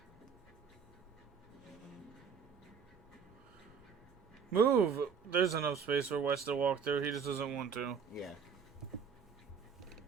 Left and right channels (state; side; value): quieter; left; 6.5 dB